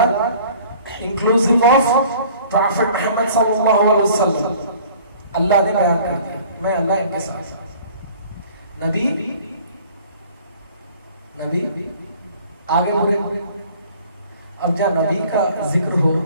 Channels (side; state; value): both; inverted; correlation -0.51